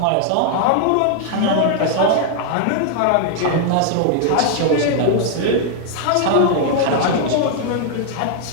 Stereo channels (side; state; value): both; different; correlation 0.00